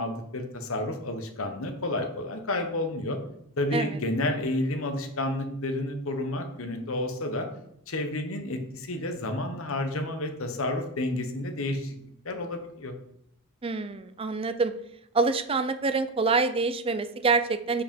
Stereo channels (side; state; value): both; normal; correlation 0.18